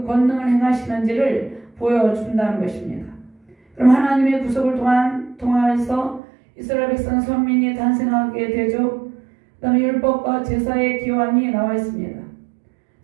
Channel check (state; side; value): drops out; left; at 6.2 s